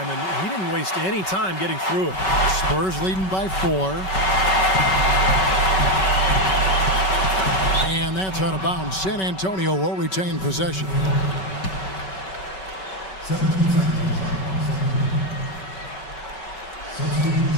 and he didn't waste any time getting through it. Spurs leading by 4. And that's out of bounds. San Antonio will retain possession.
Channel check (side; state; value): right; late; 5.3 ms